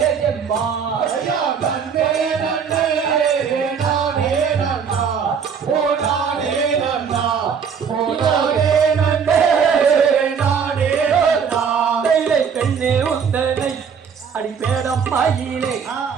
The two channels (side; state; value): left; quieter; 6.7 dB